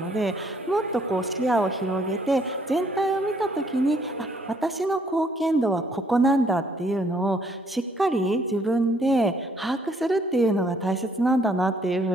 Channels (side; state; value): both; normal; correlation 0.66